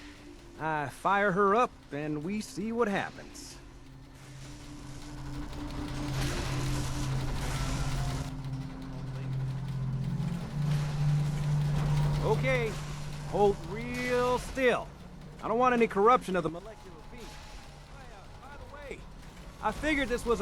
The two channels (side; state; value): both; identical; correlation 1.00